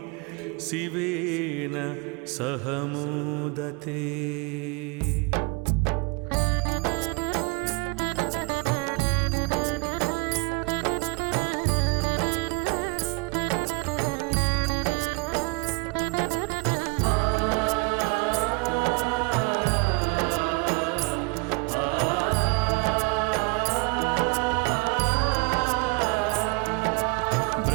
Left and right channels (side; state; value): left; quieter; 28.3 dB